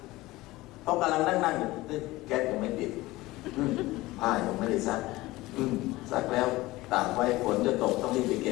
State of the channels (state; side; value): quieter; right; 19.1 dB